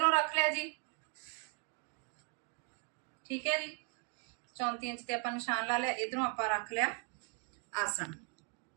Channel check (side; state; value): left; quieter; 35.6 dB